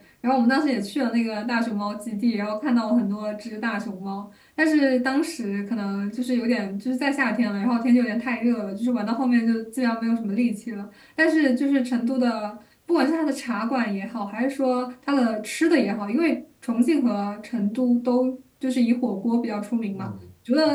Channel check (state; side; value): identical; both; correlation 1.00